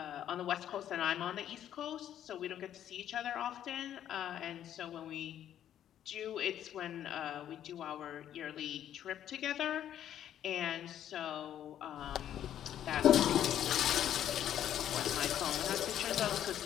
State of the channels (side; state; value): right; quieter; 10.7 dB